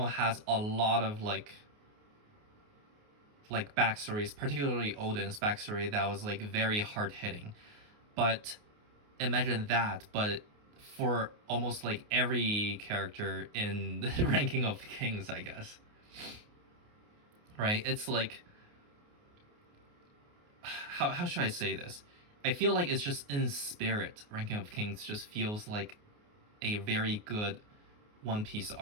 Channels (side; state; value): left; late; 28 ms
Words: has a lot of like backstories, particularly Odin's backstory, that was like very hard hitting. But imagine that, but for almost like every character in the Ranking of Kings, I guess. Right? It's like how should I say this? I feel like it's just in spirit. Ranking of Kings just feels like a very good One Piece